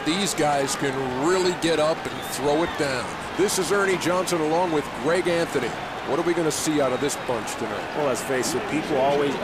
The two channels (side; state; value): both; identical; correlation 1.00